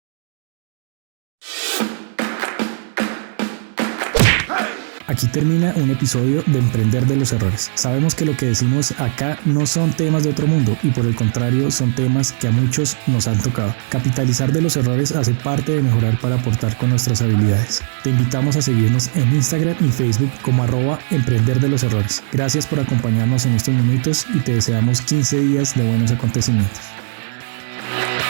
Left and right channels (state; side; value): silent; left; digital silence